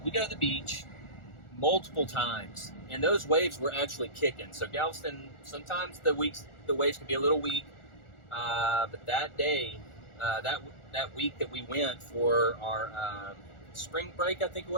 we go to the beach multiple times. And those waves were actually kicking. So Galveston, sometimes the waves can be a little weak. But that day, that week that we went for our spring break, I think it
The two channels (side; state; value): right; late; 1.4 ms